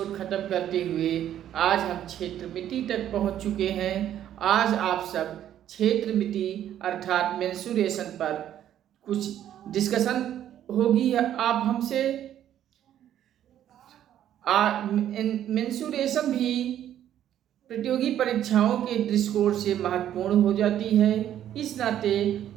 खत्म करते हुए आज हम क्षेत्र मिति तक पहुंच चुके हैं। आज आप सब क्षेत्र मिति अर्थात मेंसुरेशन पर कुछ डिस्कशन होगी। आप हमसे मेंसुरेशन भी प्रतियोगी परीक्षाओं के दृष्टिकोण से महत्वपूर्ण हो जाती है। इस नाते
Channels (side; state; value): left; quieter; 11.1 dB